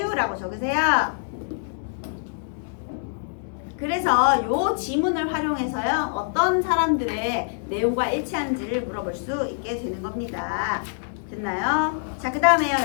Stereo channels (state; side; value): silent; right; digital silence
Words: 적으세요. 그래서 요 지문을 활용해서요. 어떤 사람들의 내용과 일치하는지를 물어볼 수 있게 되는 겁니다. 됐나요? 자, 그 다음에요.